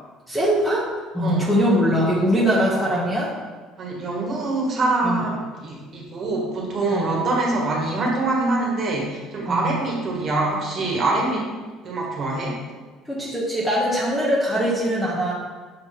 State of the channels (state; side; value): normal; both; correlation 0.58